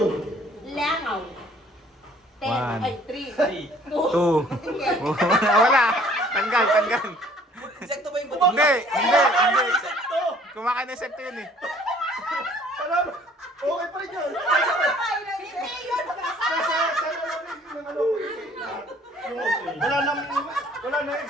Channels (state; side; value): normal; both; correlation 0.56